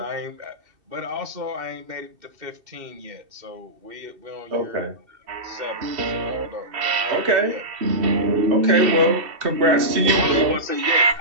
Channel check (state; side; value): late; left; 2.7 ms